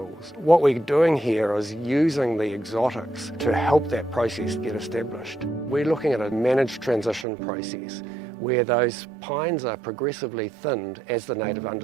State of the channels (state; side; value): drops out; left; at 7.2 s